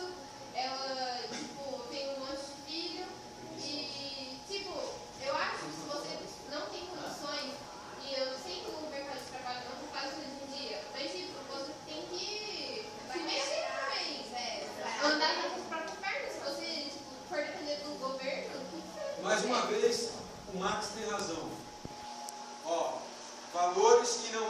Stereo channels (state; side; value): identical; both; correlation 1.00